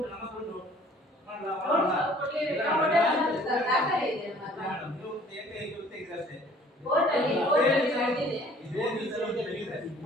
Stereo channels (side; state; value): both; normal; correlation 0.54